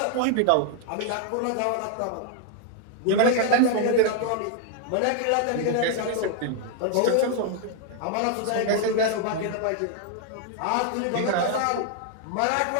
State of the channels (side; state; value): both; different; correlation 0.00